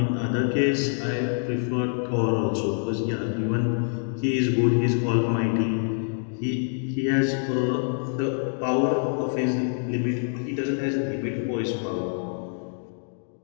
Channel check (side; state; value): right; silent; 61 dB below the other